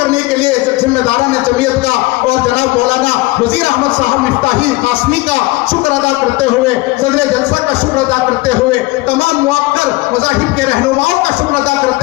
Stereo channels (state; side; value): quieter; right; 21.2 dB